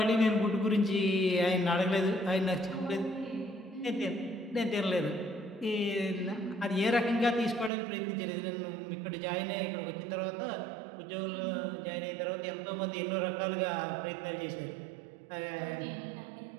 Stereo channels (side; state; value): left; drops out; at 7.7 s